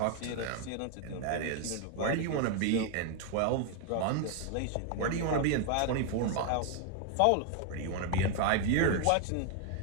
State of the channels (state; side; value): different; both; correlation 0.01